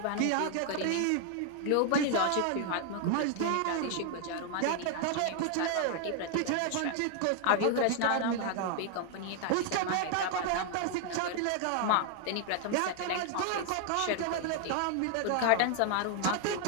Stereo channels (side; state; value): both; different; correlation 0.00